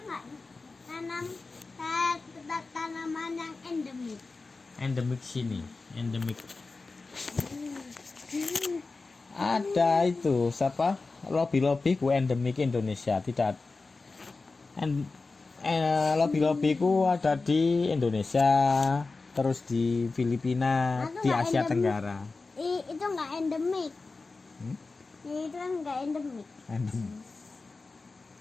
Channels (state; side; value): quieter; right; 3.8 dB